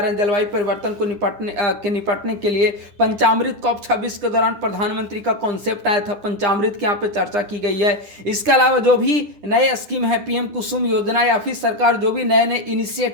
हैं जलवायु परिवर्तन को निपटने के लिए। पंचामृत COP 26 के दौरान प्रधानमंत्री का कॉन्सेप्ट आया था, पंचामृत की यहाँ पे चर्चा की गई है। इसके अलावा जो भी नए स्कीम है, PM कुसुम योजना या फिर सरकार जो भी नए नए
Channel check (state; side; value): late; left; 10 ms